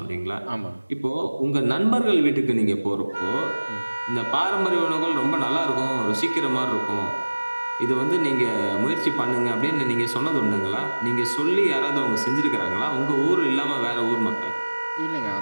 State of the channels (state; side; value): inverted; both; correlation -1.00